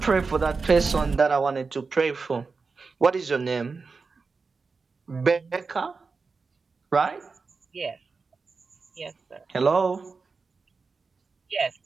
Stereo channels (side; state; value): left; quieter; 4.5 dB